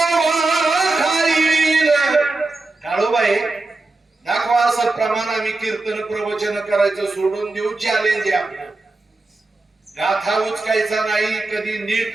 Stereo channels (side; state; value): left; quieter; 3.2 dB